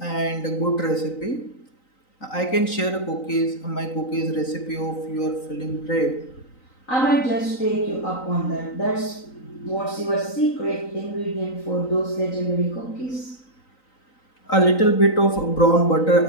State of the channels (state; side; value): late; right; 3.9 ms